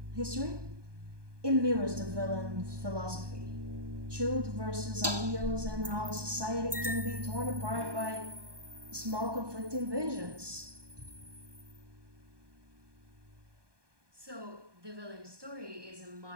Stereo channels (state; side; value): late; left; 1.2 ms